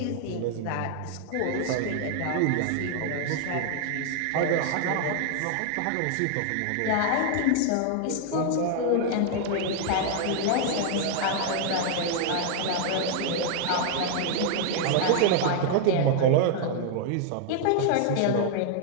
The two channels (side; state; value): both; different; correlation 0.00